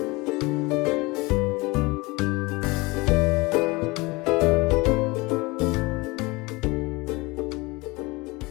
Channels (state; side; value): quieter; right; 24.1 dB